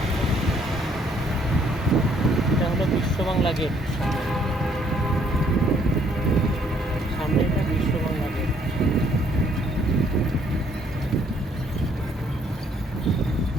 এটা হলো বিশ্ব বাংলা গেট, সামনে এটা বিশ্ব বাংলা গেট।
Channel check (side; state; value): both; normal; correlation 0.65